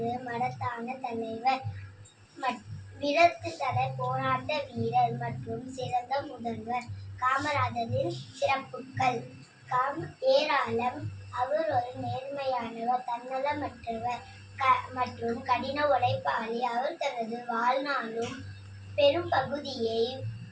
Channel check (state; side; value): identical; both; correlation 1.00